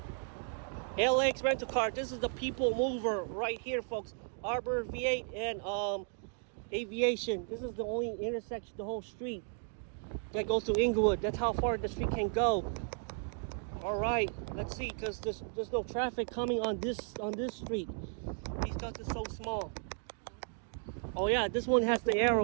LAX rental car. This is the people mover right here, folks. Arbor V8 and Aviation. This is the only intersection, the whole street that goes to Inglewood. That's how far the street can go. All right, let's see, because there's no traffic coming on this street because it's so small. Oh yeah, this one has the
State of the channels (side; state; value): left; silent; 55 dB below the other